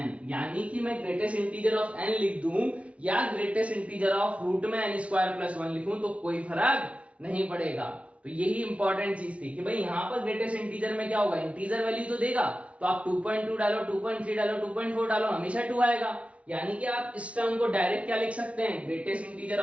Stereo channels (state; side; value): late; left; 0.063 ms